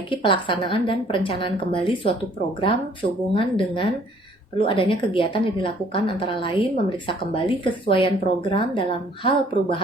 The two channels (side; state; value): both; normal; correlation 0.59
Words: pelaksanaan dan perencanaan kembali suatu program sehubungan dengan perlu adanya kegiatan yang dilakukan, antara lain memeriksa kembali kesesuaian program dalam hal